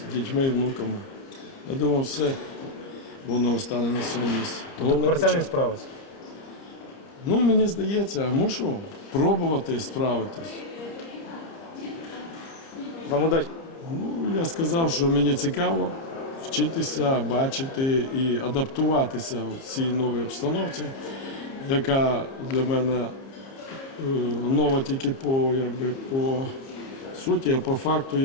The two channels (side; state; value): right; late; 30 ms